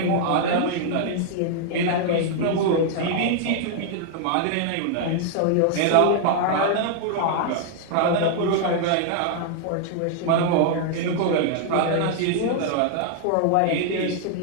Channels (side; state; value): both; different; correlation 0.00